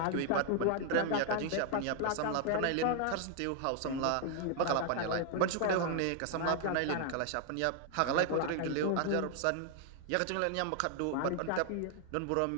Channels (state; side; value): different; both; correlation 0.00